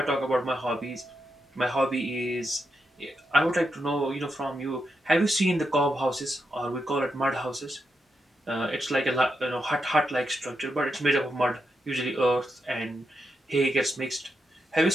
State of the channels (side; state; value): both; normal; correlation 0.85